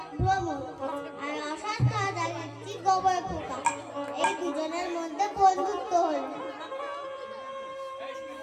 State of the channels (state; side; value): identical; both; correlation 1.00